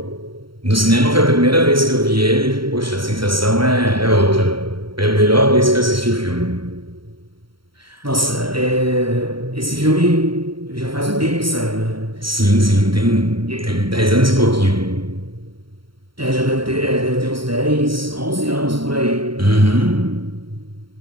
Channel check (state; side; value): late; left; 0.74 ms